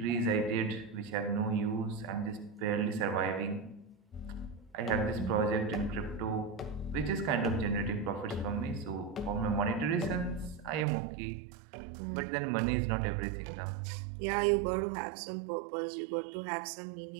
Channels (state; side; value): drops out; left; at 10.9 s